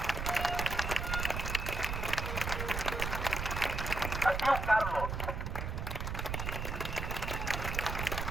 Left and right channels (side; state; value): right; noise; rumble, 3 dB below the sound